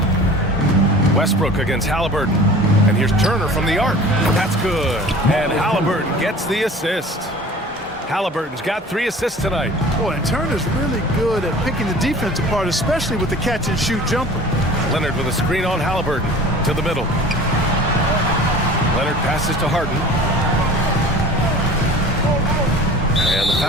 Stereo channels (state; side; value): normal; both; correlation 0.43